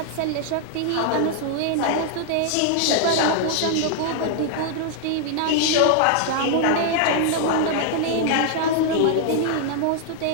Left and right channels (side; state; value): both; different; correlation 0.00